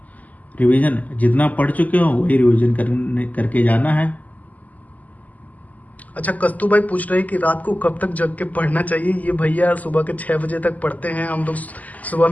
Revision जितना पढ़ चुके हो वही रिवीजन करके जाना है। अच्छा, कस्तू भाई पूछ रहे हैं कि रात को कब तक जग के पढ़ना चाहिए? ये भैया सुबह के 6 बजे तक पढ़ते हैं, हम लोग सुबह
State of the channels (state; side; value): late; right; 0.077 ms